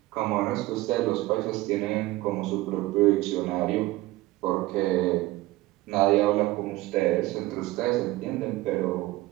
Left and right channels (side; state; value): left; quieter; 18.2 dB